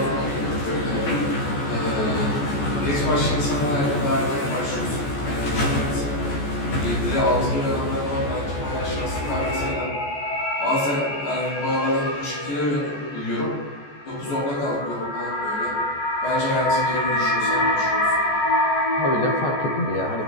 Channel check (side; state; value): right; late; 14 ms